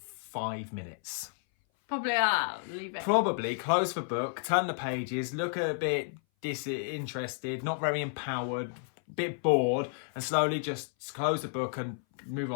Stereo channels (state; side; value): silent; right; 57 dB below the other